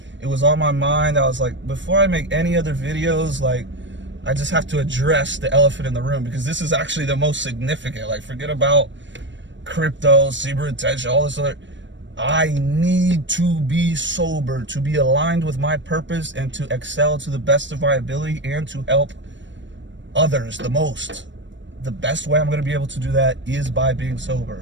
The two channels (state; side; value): late; left; 0.54 ms